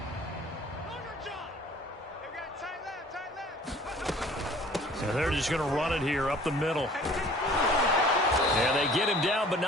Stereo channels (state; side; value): normal; both; correlation 0.51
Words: So they're just going to run it here up the middle. And they get him down, but